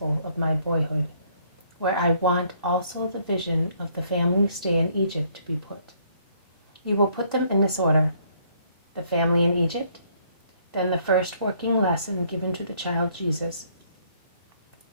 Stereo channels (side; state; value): both; inverted; correlation -0.66